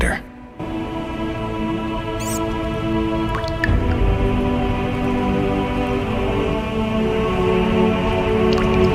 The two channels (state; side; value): identical; both; correlation 1.00